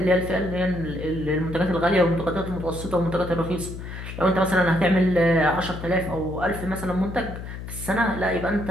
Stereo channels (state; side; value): noise; left; hum, 9 dB below the sound